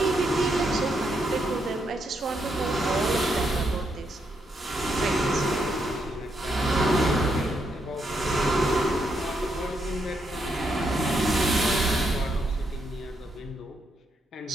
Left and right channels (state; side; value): normal; both; correlation 0.79